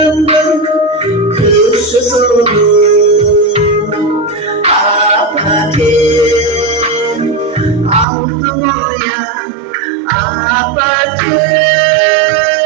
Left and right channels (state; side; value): drops out; left; at 8.1 s